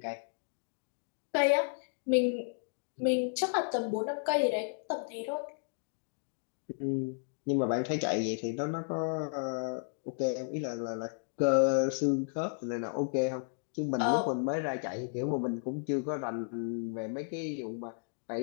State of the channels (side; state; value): right; silent; digital silence